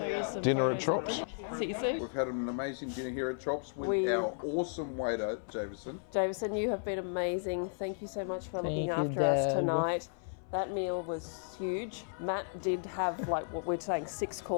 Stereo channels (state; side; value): silent; right; 55 dB below the other